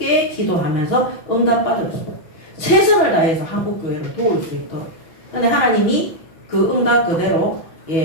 기도하면서 응답받았어요. 최선을 다해서 한국교회를 도울 수 있도록. 근데 하나님이 그 응답 그대로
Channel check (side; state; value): right; late; 6.2 ms